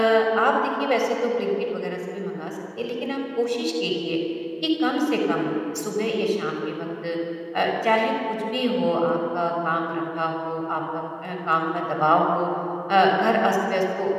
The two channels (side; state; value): both; identical; correlation 1.00